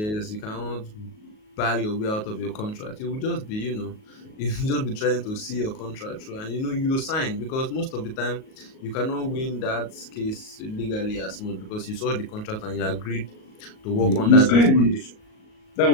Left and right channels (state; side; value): late; right; 38 ms